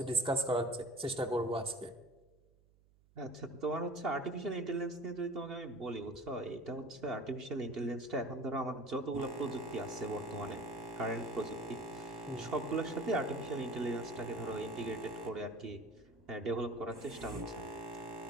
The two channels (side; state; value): right; noise; hum, 30 dB below the sound